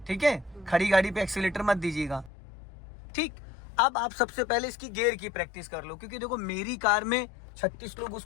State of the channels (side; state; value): right; drops out; at 2.3 s